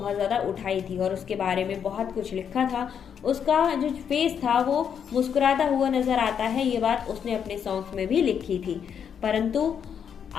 ज़्यादा उठाई थी और उसके बारे में बहुत कुछ लिखा था। उसका जो फेस था वो मुस्कुराता हुआ नजर आता है, ये बात उसने अपने सॉन्ग्स में भी लिखी थी। परंतु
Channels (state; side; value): quieter; right; 7.8 dB